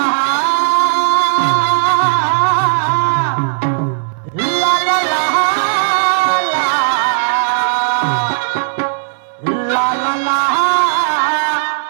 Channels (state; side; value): silent; left; digital silence